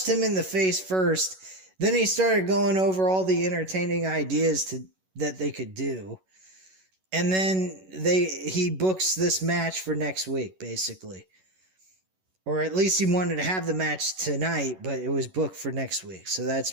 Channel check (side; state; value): left; late; 11 ms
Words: him in the face first. Then he started going over all the entertaining ideas that they could do. And then he books this match for next week, basically. or at least he wanted to have the match tonight, but it was booked for next week. So that's